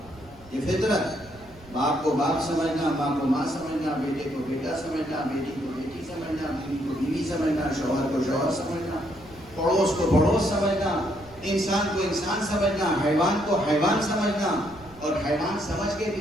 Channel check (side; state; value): right; noise; rumble, 23 dB below the sound